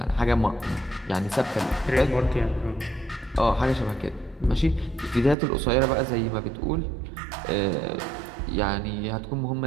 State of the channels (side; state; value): left; drops out; at 5.4 s